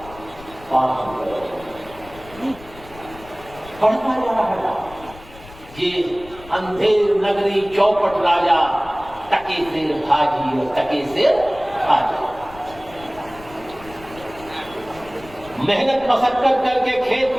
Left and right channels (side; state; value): left; noise; rumble, 20 dB below the sound